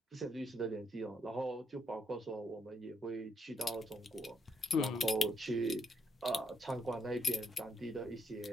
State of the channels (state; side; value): normal; both; correlation 0.76